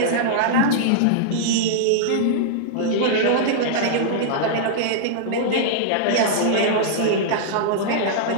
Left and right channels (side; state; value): both; different; correlation -0.02